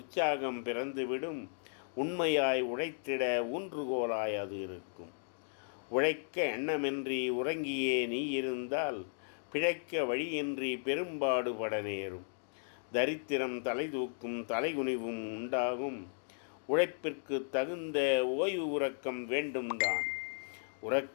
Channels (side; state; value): right; silent; digital silence